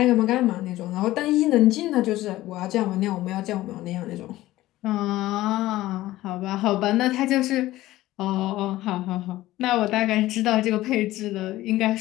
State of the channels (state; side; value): quieter; right; 16.2 dB